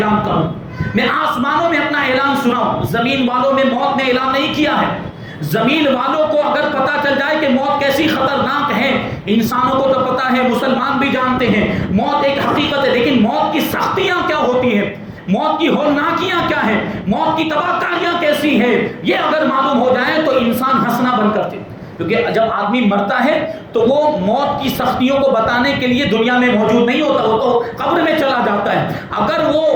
کروں، میں آسمانوں میں اپنا اعلان سناؤں. زمین والوں میں موت نے اعلان نہیں کیا ہے. زمین والوں کو اگر پتہ چل جائے کہ موت کیسی خطرناک ہے، انسانوں کو تو پتہ ہے، مسلمان بھی جانتے ہیں موت ایک حقیقت ہے، لیکن موت کی سختیاں کیا ہوتی ہیں، موت کی ہولناکیاں کیا ہیں، موت کی تباہ کاریاں کیسی ہیں، یہ اگر معلوم ہو جائے تو انسان ہنسنا بند کرتے. کیونکہ جب آدمی مرتا ہے تو وہ موت کی سختیوں کو بتانے کے لیے دنیا میں موجود نہیں ہوتا، وہ تو قبر میں چلا جاتا ہے. اگر وہ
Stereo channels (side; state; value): both; identical; correlation 1.00